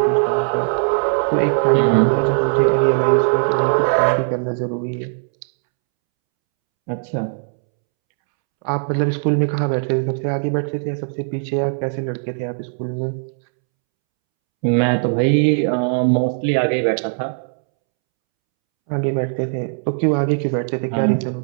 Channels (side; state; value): left; silent; 66 dB below the other